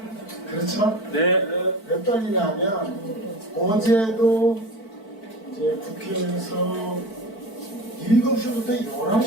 그렇죠? 네. 왜 떨리냐면 어제도 이제 국회에서 7시부터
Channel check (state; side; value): late; right; 4.5 ms